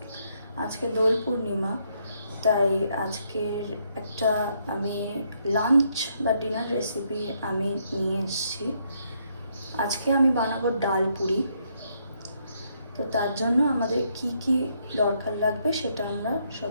আজকে দোল পূর্ণিমা, তাই আজকের একটা আমি লাঞ্চ বা ডিনার রেসিপি আমি নিয়ে এসেছি। আজকে আমি বানাবো ডাল পুরি। তো তার জন্য আমাদের কি কি দরকার লাগবে সেটা আমরা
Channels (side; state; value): both; inverted; correlation -0.74